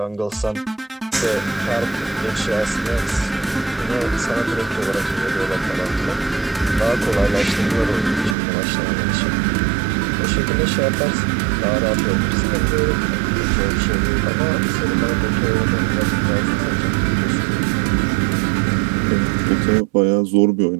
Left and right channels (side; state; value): left; drops out; at 8.3 s